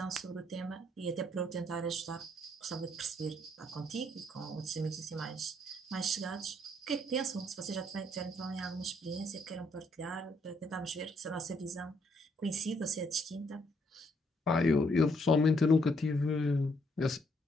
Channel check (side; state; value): both; normal; correlation 0.71